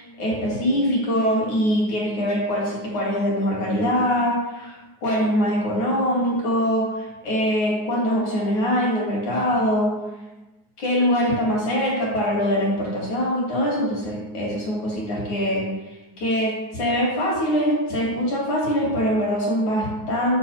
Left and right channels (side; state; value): right; late; 9.5 ms